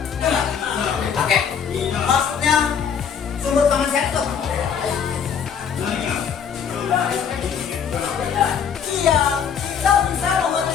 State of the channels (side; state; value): right; quieter; 7.4 dB